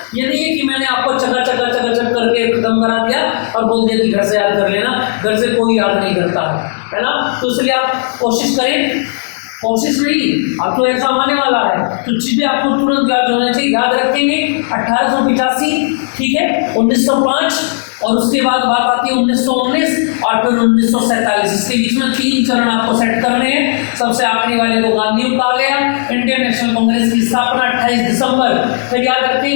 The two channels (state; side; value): silent; right; digital silence